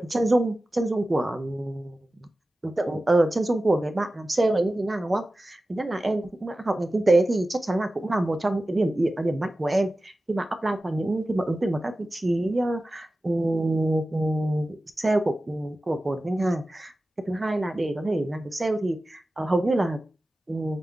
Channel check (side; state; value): both; normal; correlation 0.95